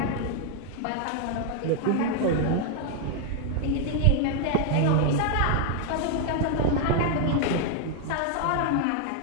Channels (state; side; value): different; both; correlation 0.00